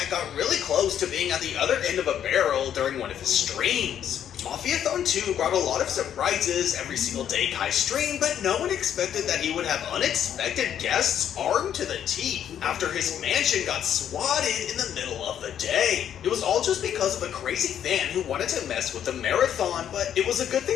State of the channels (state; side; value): quieter; right; 9.7 dB